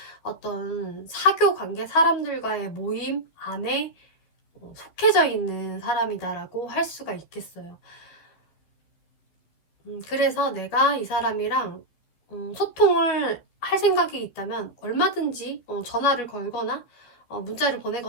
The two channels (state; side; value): late; right; 12 ms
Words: 어떤 사교 관계 사람들과의 모임 안에 속해져 있는 사람이다라고 할 수가 있겠어요. 그래서 내가 이 사람이랑 소통을 할 생각이 있다면 얼마든지 전화를 걸거나 문자를